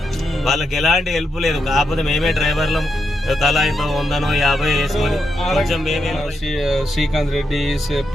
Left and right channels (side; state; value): both; normal; correlation 0.83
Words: వాళ్ళకి ఎలాంటి హెల్ప్ లేదు. కాకపోతే మేమే డ్రైవర్లం తలా ఇంత 100-50 వేసుకొని కొంచెం మేమే. శ్రీకాంత్ రెడ్డి,